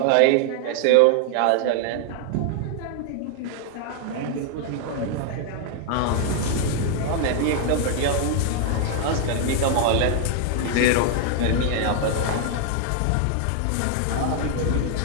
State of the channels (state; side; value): different; both; correlation 0.00